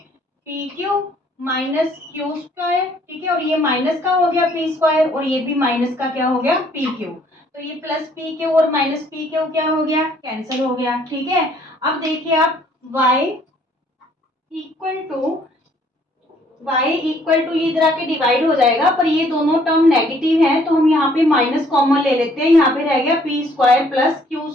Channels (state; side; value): normal; both; correlation 0.62